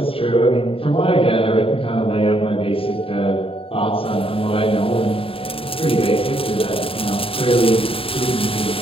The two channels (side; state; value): right; late; 0.27 ms